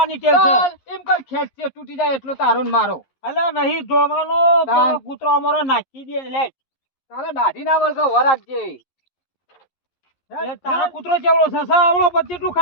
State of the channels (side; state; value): right; late; 11 ms